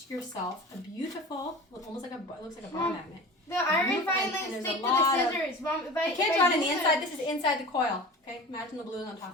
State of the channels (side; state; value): both; normal; correlation 0.36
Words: yourself a beautiful, almost like it looks like a bar magnet. The iron and filings there's stick a to lot the of- scissors. Mom, if I can't draw it on the use inside. This is inside the coil. Okay, imagine the blue on